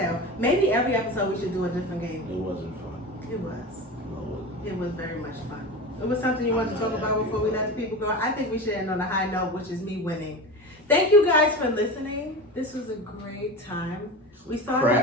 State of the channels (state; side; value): normal; both; correlation 0.28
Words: Maybe every episode we should do a different game. It wasn't fun. It was. No, it wasn't. It was very much fun. It was something you wanted to talk about before we let the people go. I think we should end on a high note, which is me winning. Thank you guys for listening. This was a great time. We